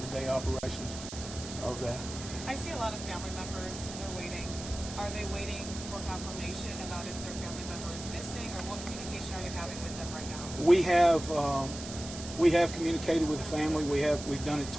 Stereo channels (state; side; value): noise; right; hiss, 11 dB below the sound